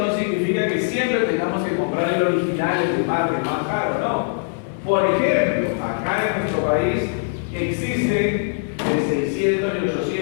significa que siempre tengamos que comprar el original, el de marca, el más caro, ¿no? Por ejemplo, acá en nuestro país existen de 600 y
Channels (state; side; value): silent; right; 59 dB below the other